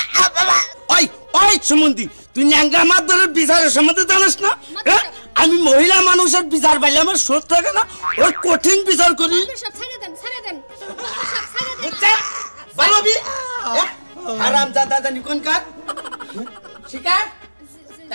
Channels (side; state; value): both; inverted; correlation -1.00